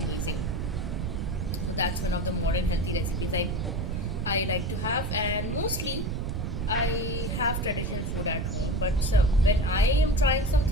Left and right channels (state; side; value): noise; right; rumble, 2 dB below the sound